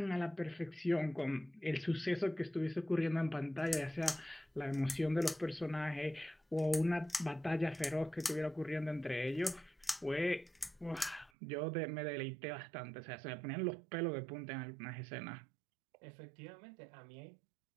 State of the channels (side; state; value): left; drops out; at 11.3 s